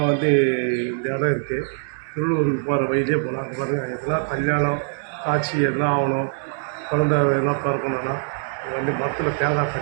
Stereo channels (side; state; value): left; silent; 64 dB below the other